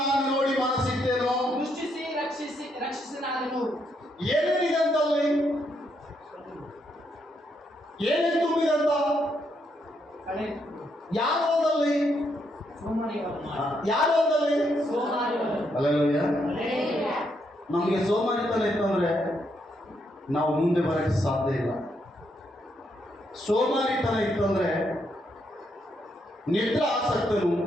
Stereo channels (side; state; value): both; normal; correlation 0.77